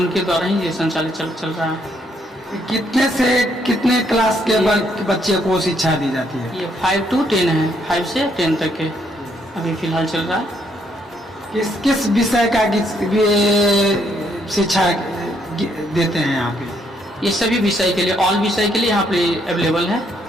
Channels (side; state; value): both; normal; correlation 0.72